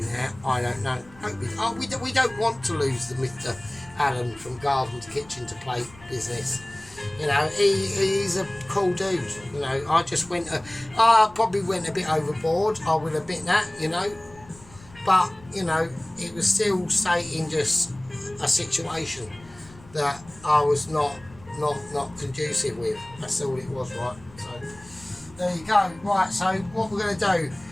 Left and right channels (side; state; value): left; noise; rumble, 23 dB below the sound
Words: now. I don't know. We don't want to lose the Alan from Garden to Kitchen to Plate business. You know, he's a cool dude. You know, I probably went a bit overboard. I will admit that. You know, but you know, it was still stating just a situation that I was not conducive with. That's all it was, right? So there you go. Right. So what we're going to do?